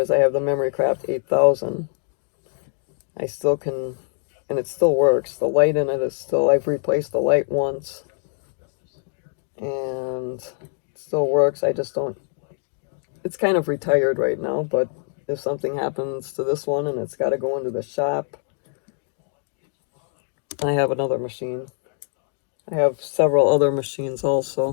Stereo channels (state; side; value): silent; right; 63 dB below the other